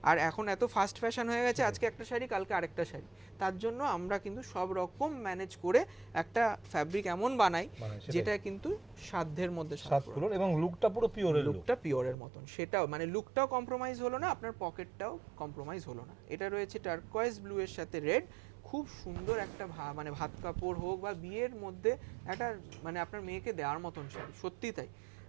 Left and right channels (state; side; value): drops out; left; at 12.2 s